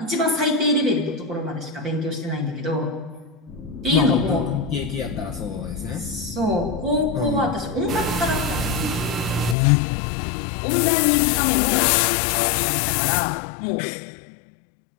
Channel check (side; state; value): right; drops out; at 9.6 s